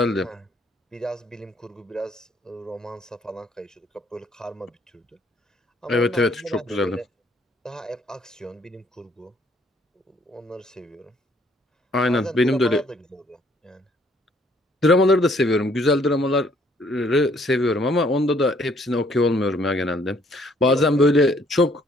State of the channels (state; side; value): normal; both; correlation 0.64